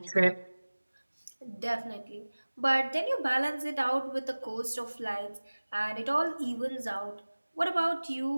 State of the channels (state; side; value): inverted; both; correlation -1.00